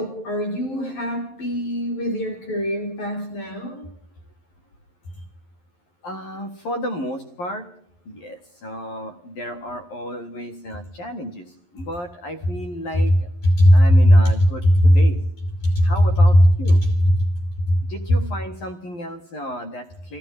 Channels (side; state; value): right; late; 11 ms